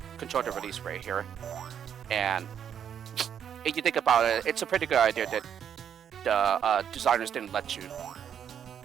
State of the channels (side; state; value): left; quieter; 8.6 dB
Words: control the release rate here. And if you think about it, it's a pretty good idea that the designers didn't let you